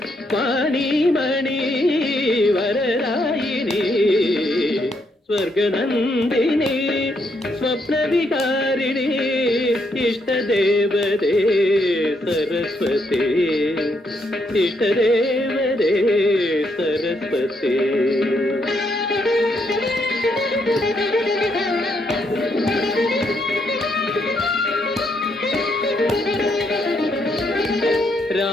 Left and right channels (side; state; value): both; normal; correlation 0.76